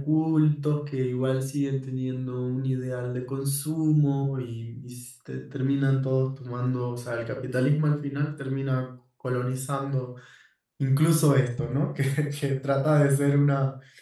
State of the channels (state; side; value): identical; both; correlation 1.00